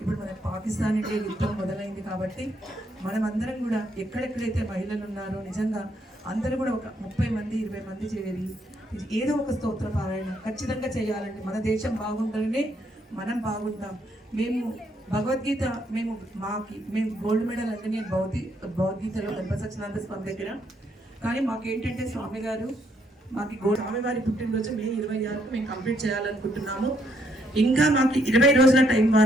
మన పాకిస్తాన్ ఇండియా యుద్ధం మొదలైంది కాబట్టి మనం అందరం కూడా ఎక్కడెక్కడైతే మహిళలు ఉన్నారో నిజంగా అందరూ కూడా ఒక 30 మంది 20 మంది చేరి ఏదో ఒక స్తోత్ర పారాయణ ఖచ్చితంగా చేయాలండి. మన దేశం బాగుండాలనే మనం బాగుంటాం. మేము భగవద్గీత మేము గోల్డ్ మెడల్ అంటే నేను భగవద్గీతలో గణపతి సత్యనారాయణ స్వామి దగ్గర, కానీ మాకేంటంటే స్వామి గారు మాకు స్వామివారి పుట్టినరోజు మే 26కు మేము కంప్లీట్ చేయాలనుకుంటున్నాము. ఇంకా మాకు 20 రోజుల టైం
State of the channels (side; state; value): both; normal; correlation 0.72